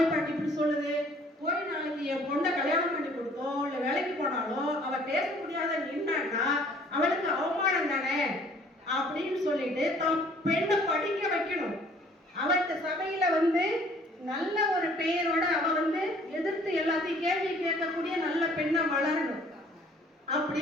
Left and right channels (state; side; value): normal; both; correlation 0.56